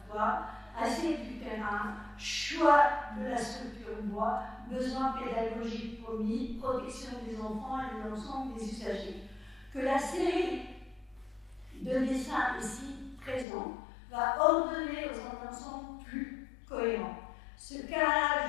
assiette du terrain, choix de la structure bois, besoins pédagogiques promis, protection des enfants et de l'ensemble des usagers. Que la série de dessins ici présents va ordonner dans un ensemble plus cohérent. Ce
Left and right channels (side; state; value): right; drops out; at 13.5 s